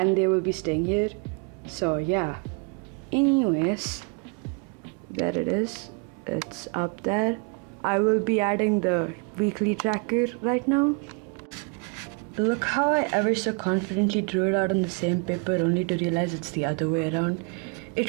they will be staying here. So yeah. Anyways, there it is. It's up there. I will be adding the weekly tracker right now. Look how I ever so confidently drew it out on the same paper only to realize it's the other way around.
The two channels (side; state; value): left; quieter; 34.8 dB